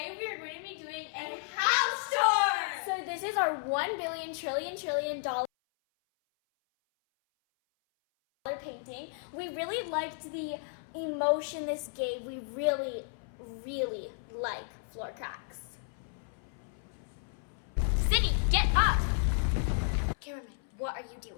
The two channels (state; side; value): silent; right; 56 dB below the other